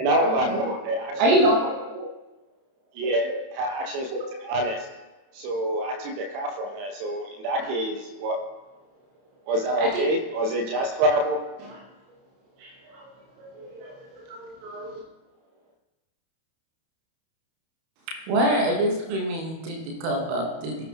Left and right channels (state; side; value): late; left; 31 ms